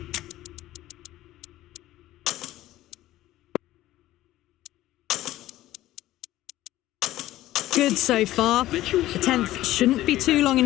good so far. The 10th shouldn't be too long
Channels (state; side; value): quieter; right; 15.2 dB